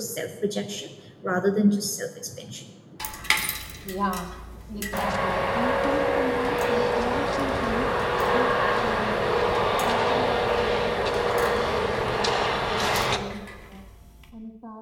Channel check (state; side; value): identical; both; correlation 1.00